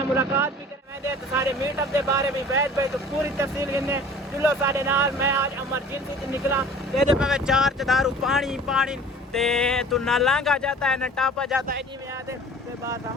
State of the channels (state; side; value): normal; both; correlation 0.45